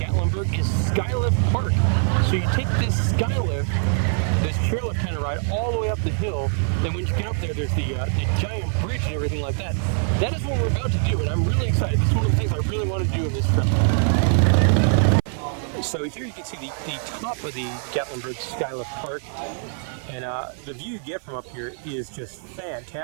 is Skylift Park. So you take this Skylift, this chairlift kind of ride, all the way up the hill. Then when you get up there, there's the giant bridge and everything like that. That is what we're about to do, and I'm really excited. This is one of the things I really want to do in this trip. So here you can see the top of the Gatlinburg Skylift Park, and the view you get from up here is just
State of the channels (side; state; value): left; silent; 55 dB below the other